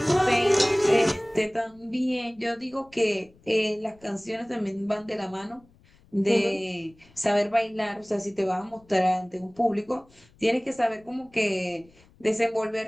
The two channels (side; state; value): left; noise; rumble, 29 dB below the sound